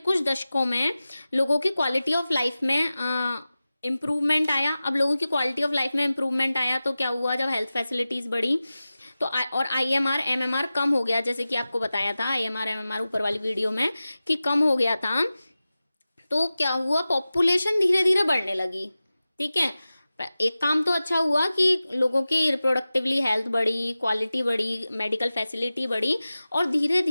दशकों में लोगों की क्वालिटी ऑफ लाइफ में इम्प्रूवमेंट आया। अब लोगों की क्वालिटी ऑफ लाइफ में इम्प्रूवमेंट आया तो क्या हुआ, जब हेल्थ फैसिलिटीज बढ़ी तो और आईएमआर एमएमआर कम हो गया, जैसे कि आपको बताया था आईएमआर एमएमआर ऊपर वाली वीडियो में कि कम हो गया था। तो क्या हुआ, पॉपुलेशन धीरे धीरे बढ़ने लगी, ठीक है। एक काम तो अच्छा हुआ कि लोगों की रिप्रोडक्टिवली हेल्थ बढ़ी, क्वालिटी बढ़ी, मेडिकल फैसिलिटी बढ़ी और धीरे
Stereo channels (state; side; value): inverted; both; correlation -0.96